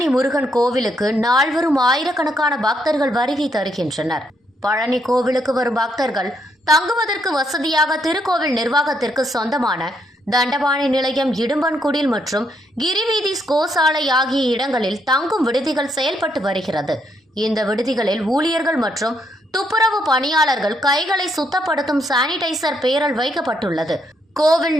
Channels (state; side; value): normal; both; correlation 0.75